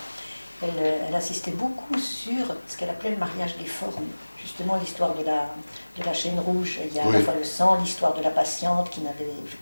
elle insistait beaucoup sur ce qu'elle appelait le mariage des formes. Justement, l'histoire de la chaîne rouge, il y a à la fois le sang, l'histoire de la patiente qui n'avait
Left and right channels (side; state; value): both; inverted; correlation -1.00